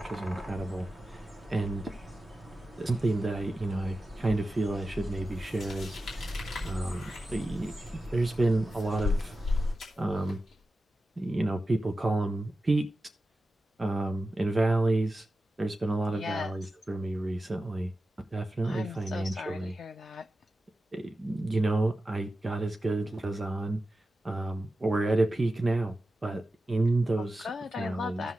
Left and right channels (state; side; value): normal; both; correlation 0.93